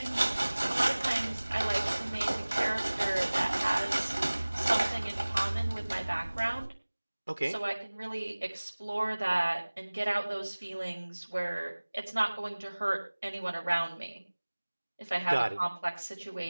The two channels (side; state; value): both; inverted; correlation -1.00